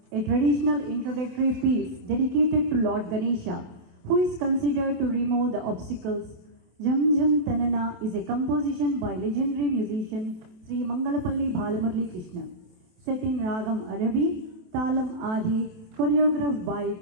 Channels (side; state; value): left; late; 27 ms